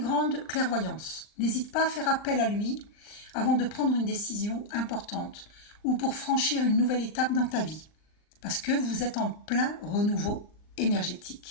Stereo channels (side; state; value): right; late; 39 ms